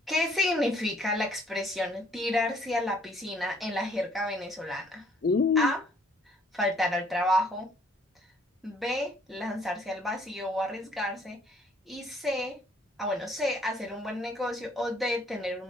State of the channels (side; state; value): both; normal; correlation 0.63